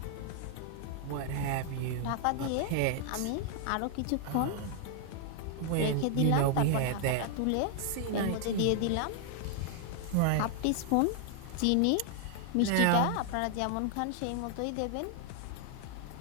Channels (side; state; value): both; different; correlation 0.00